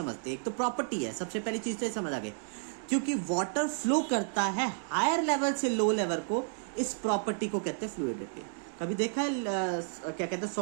हैं। एक तो प्रॉपर्टी है, सबसे पहली चीज तो समझ आ गई, क्योंकि वाटर फ्लो करता है हायर लेवल से लो लेवल को, इस प्रॉपर्टी को कहते हैं फ्लूइडिटी। कभी देखा है क्या कहते हैं,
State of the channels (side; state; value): left; silent; digital silence